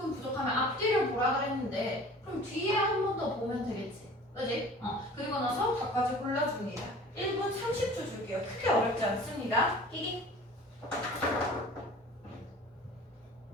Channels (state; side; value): normal; both; correlation 0.44